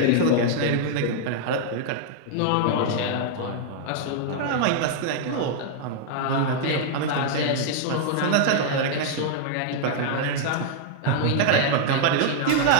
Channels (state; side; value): different; both; correlation -0.01